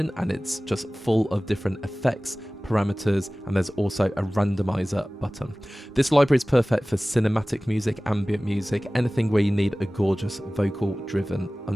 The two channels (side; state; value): both; normal; correlation 0.98